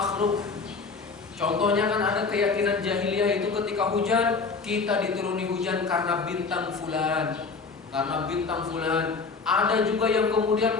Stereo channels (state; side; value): quieter; right; 4.6 dB